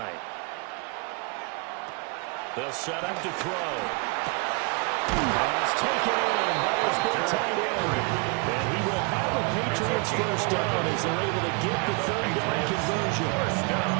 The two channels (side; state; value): left; quieter; 30.5 dB